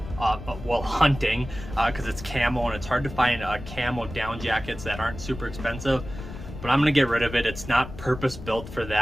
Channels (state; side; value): noise; left; rumble, 12 dB below the sound